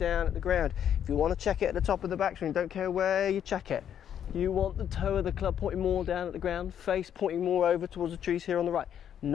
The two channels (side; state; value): right; quieter; 9.4 dB